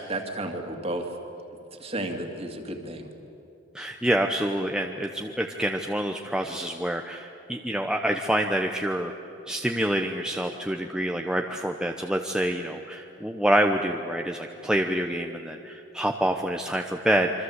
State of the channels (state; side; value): normal; both; correlation 0.75